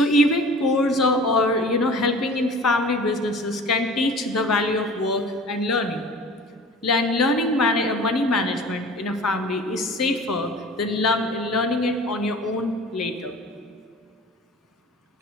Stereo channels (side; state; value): both; normal; correlation 0.42